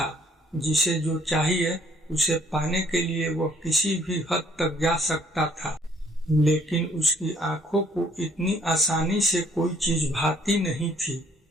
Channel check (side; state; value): both; normal; correlation 0.63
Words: जिसे जो चाहिए उसे पाने के लिए वह किसी भी हद तक जा सकता था। लेकिन उसकी आंखों को इतनी आसानी से कोई चीज भाती नहीं थी।